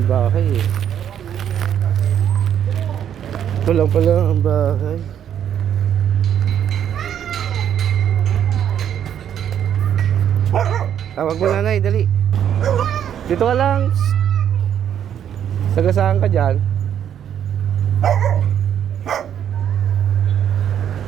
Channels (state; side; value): quieter; left; 9.5 dB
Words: bahay eh. Ito lang pala ang bahay. Tawag mo nanay, dali. Dito ka lang. Sagasaan ka dyan.